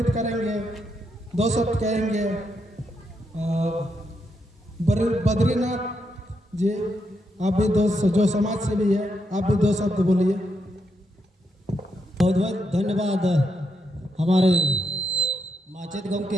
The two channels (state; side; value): normal; both; correlation 0.81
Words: करेंगे, 2 शब्द कहेंगे। बद्रीनाथ जी, आप भी जो समाज से भी है, आप भी 2 शब्द बोलिए। बहुत बहुत धन्यवाद हमारे माचेत गांव